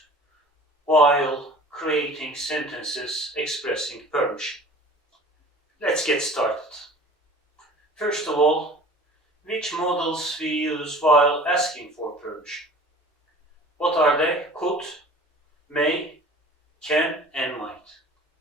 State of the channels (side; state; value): both; normal; correlation 0.44